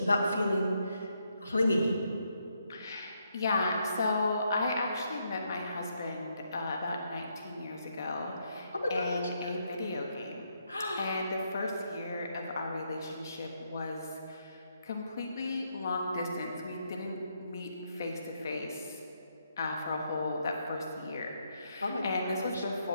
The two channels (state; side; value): inverted; both; correlation -0.77